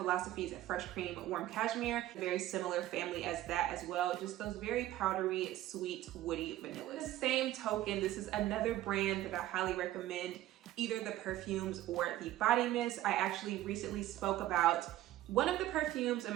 Fresh Cream Warm Cashmere, very similar family as that as well, just those very powdery, sweet, woody vanillas. The same token, this is another brand that I highly recommend, either the perfumes or the body mist. I actually recently spoke about one of the perfumes in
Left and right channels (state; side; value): quieter; left; 14.5 dB